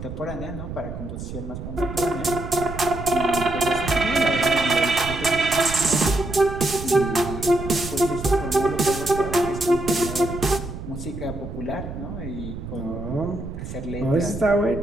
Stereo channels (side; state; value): right; noise; rumble, 9 dB below the sound